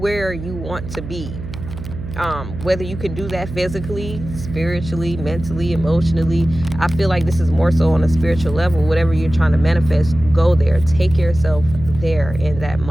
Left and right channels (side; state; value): right; noise; hum, 10 dB below the sound